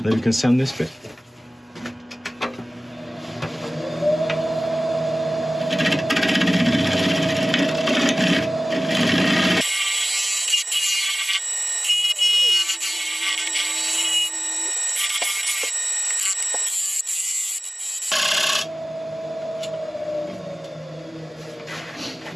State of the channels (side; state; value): both; normal; correlation 0.96